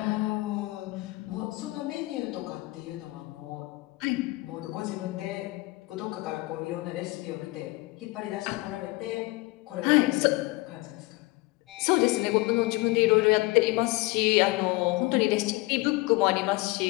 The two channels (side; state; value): right; quieter; 22.1 dB